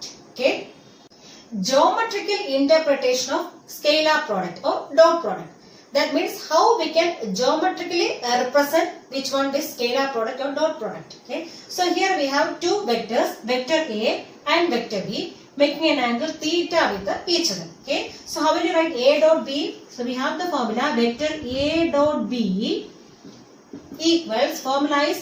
Okay. Geometrical interpretation of scalar product or dot product. That means how we can geometrically represent which one? This scalar product or dot product. Okay. So here we have two vectors, vector A and vector B, making an angle theta with each other. Okay. So how will you write A dot B? So we have the formula vector A dot B equals, formula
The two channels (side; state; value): both; identical; correlation 1.00